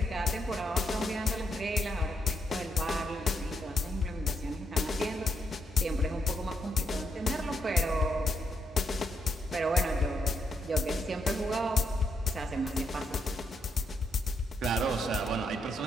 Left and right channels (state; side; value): normal; both; correlation 0.78